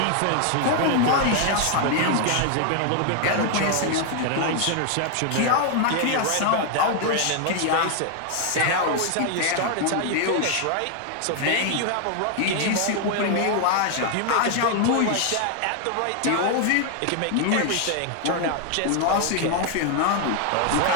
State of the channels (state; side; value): different; both; correlation 0.00